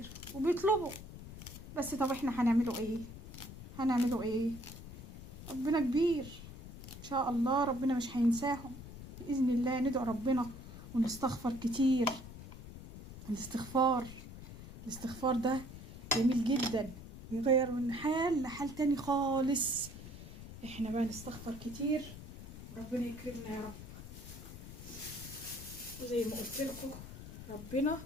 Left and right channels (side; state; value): left; noise; rumble, 13 dB below the sound